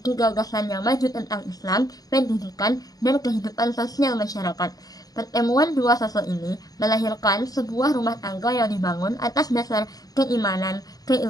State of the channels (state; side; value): late; right; 0.18 ms